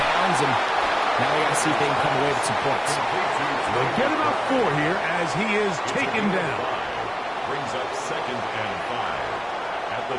and now they got to see if they can come away with some points. They'll get about 4 here as he is taken down. Brings up 2nd and 5 at the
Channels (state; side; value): identical; both; correlation 1.00